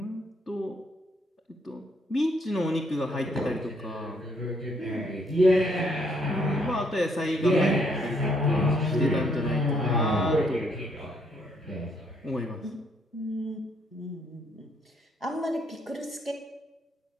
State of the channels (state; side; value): normal; both; correlation 0.70